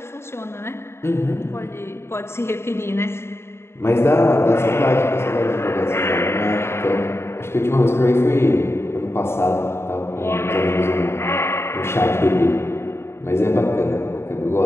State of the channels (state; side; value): late; right; 0.12 ms